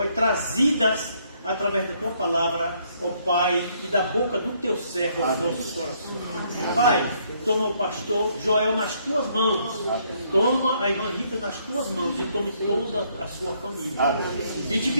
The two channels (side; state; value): both; inverted; correlation -0.69